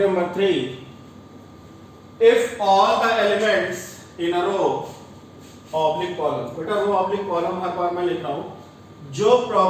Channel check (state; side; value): identical; both; correlation 1.00